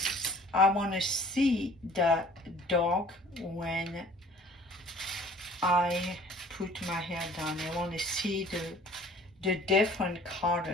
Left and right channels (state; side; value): normal; both; correlation 0.51